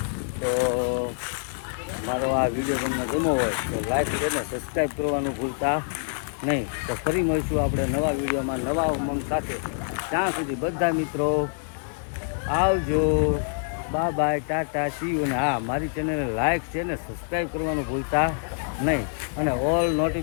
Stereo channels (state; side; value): silent; right; digital silence